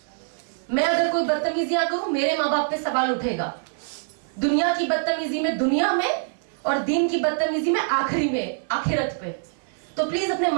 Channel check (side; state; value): left; silent; 62 dB below the other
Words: मैं अगर कोई बदतमीजियां करूं, मेरे माँ बाप पे सवाल उठेगा। दुनिया की बदतमीजी में दुनिया में, और दीन की बदतमीजी में आखिरी में, आखिरत पे। तो प्लीज अपने